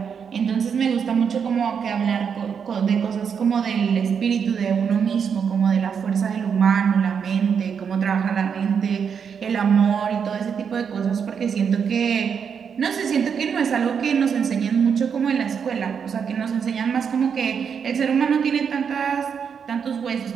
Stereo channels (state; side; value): quieter; left; 6.9 dB